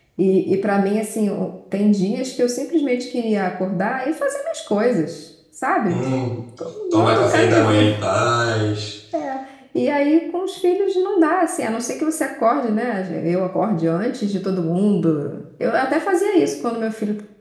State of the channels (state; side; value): identical; both; correlation 1.00